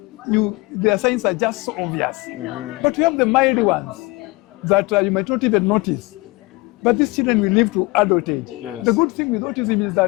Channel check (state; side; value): quieter; right; 23.8 dB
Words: their signs are just so obvious. But we have the mild ones that you might not even notice. But these children will live to adult age. Yes. The good thing with autism is